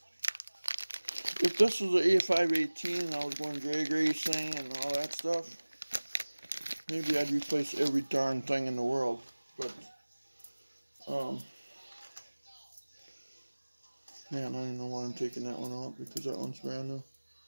if this was an A518 and I was going drag racing and all that stuff, maybe I'd replace every darn thing in the world. But, man, I don't know why I'm taking that one out because that one's brand new.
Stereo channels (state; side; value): inverted; both; correlation -1.00